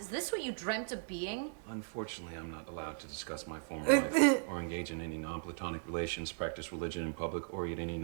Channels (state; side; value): silent; left; digital silence